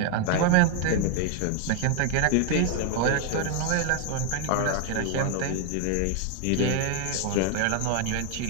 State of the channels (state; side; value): different; both; correlation 0.00